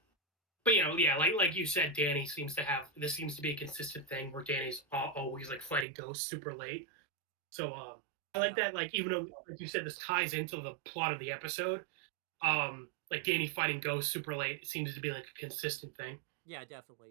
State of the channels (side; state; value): left; drops out; at 5.9 s